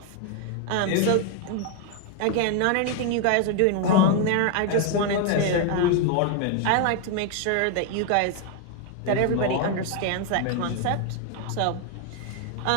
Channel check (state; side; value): different; both; correlation 0.00